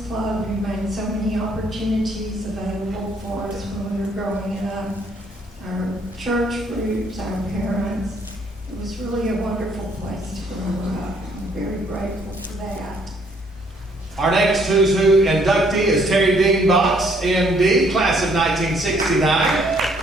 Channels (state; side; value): normal; both; correlation 0.66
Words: Club, who made so many opportunities available for us when we were growing up, our church groups, our parents. It was really a wonderful place to grow up. I'm very grateful for that. Our next Who's Who inductee is Terry Dean Box, MD, class of 1969.